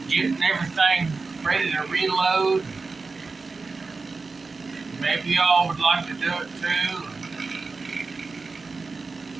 getting everything ready to reload. Maybe y'all would like to do it too.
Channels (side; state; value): left; quieter; 4.1 dB